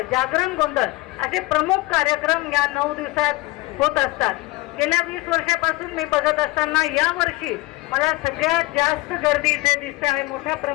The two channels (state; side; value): quieter; right; 21.2 dB